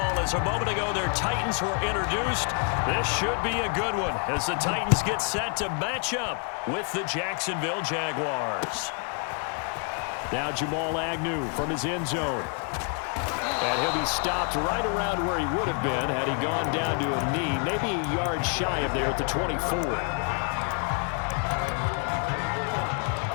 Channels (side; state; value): right; quieter; 39.8 dB